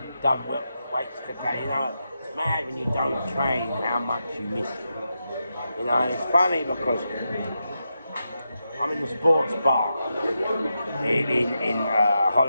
done weights today. You know, it's mad when you don't train how much you miss it. You know, and it's funny because I'm in the sports bar in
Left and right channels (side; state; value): both; inverted; correlation -0.87